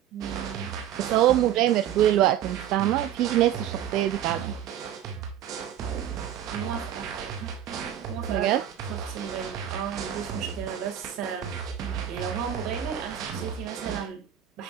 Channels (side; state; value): left; quieter; 10.6 dB